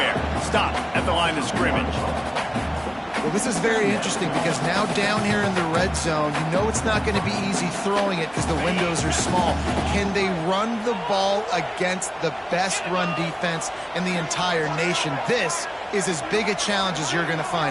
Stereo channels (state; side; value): identical; both; correlation 1.00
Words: Stop at the line of scrimmage. Well, this is very interesting because now down here in the red zone, you know it's not going to be easy throwing it because the windows are small. Can they run the ball against the best run defense in the entire nation? This is as big a challenge as you're going to